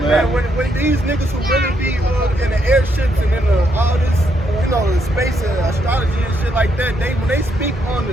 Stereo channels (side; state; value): both; normal; correlation 0.76